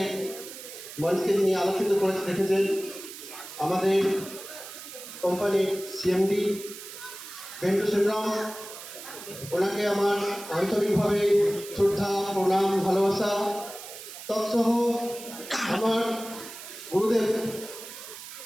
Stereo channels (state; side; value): noise; right; hiss, 13 dB below the sound